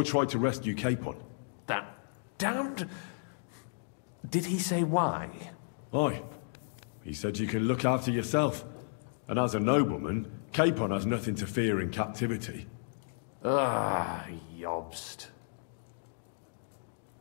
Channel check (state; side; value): silent; right; digital silence